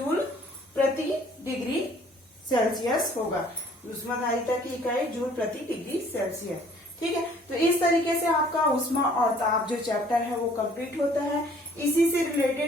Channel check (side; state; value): both; normal; correlation 0.57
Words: प्रति डिग्री सेल्सियस होगा। ऊष्माधारिता की इकाई जूल प्रति डिग्री सेल्सियस। ठीक है, तो इस तरीके से आपका ऊष्मा और ताप जो चैप्टर है वो कंप्लीट होता है। इसी से